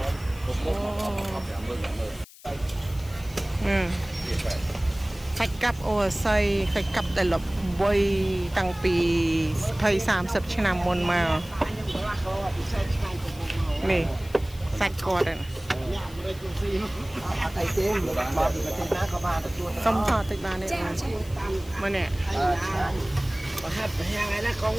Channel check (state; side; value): noise; left; hiss, 21 dB below the sound